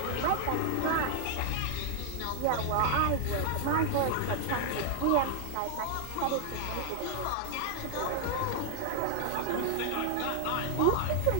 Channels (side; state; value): both; different; correlation 0.00